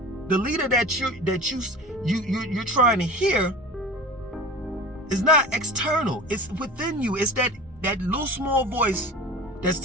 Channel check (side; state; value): both; normal; correlation 0.36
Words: The leader that you're trying to hear is not external, it's within you. It's that little small voice that's